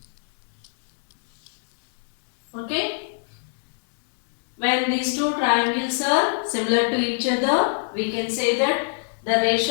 Okay. When these two triangles are similar to each other, we can say that the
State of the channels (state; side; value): silent; right; digital silence